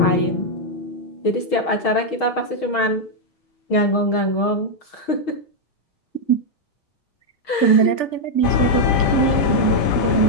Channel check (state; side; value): late; right; 6.4 ms